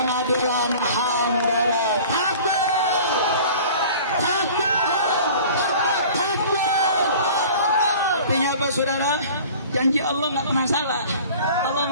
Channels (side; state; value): both; inverted; correlation -0.44